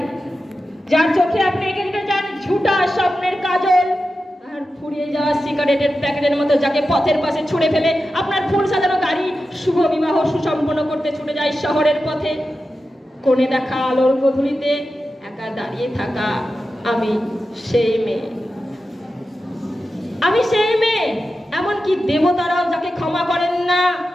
যার চোখে আপনি এঁকে দিতে চান ঝুটা স্বপ্নের কাজল, আর ফুরিয়ে যাওয়া সিগারেটের প্যাকেটের মতো যাকে পথের পাশে ছুঁড়ে ফেলে আপনার ফুল সাজানো গাড়ি শুভ বিবাহ সুসম্পন্ন করতে ছুটে যায় শহরের পথে। কোণে দেখা আলোর গধূলিতে একা দাঁড়িয়ে থাকা, আমি সেই মেয়ে। আমি সেই মেয়ে, এমনকি দেবতারাও যাকে ক্ষমা করেন না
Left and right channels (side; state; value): both; normal; correlation 0.92